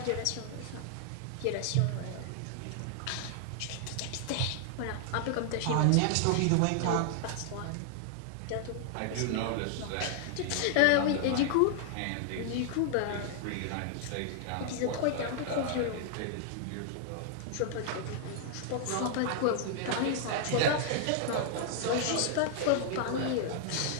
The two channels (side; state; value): both; different; correlation 0.00